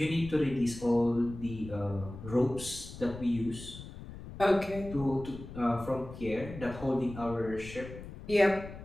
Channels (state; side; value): noise; left; rumble, 13 dB below the sound